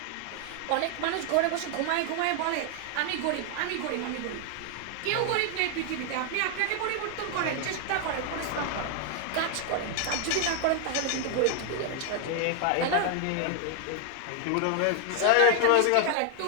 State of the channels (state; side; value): different; both; correlation 0.00